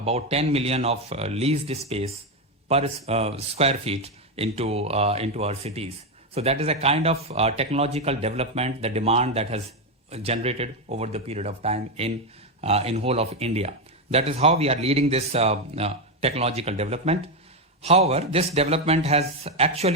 10 million of leased space per square feet into our cities. So that is a kind of technological development, the demand that has generated over the period of time in whole of India. That is how we are leading this technological development. However, this development has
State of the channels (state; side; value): normal; both; correlation 0.08